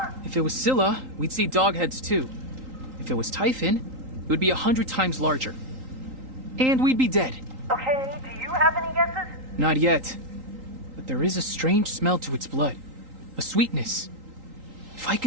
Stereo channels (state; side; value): late; left; 3.8 ms